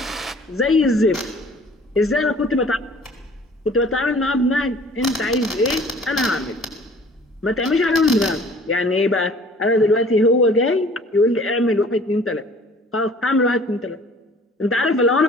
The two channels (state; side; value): normal; both; correlation 0.51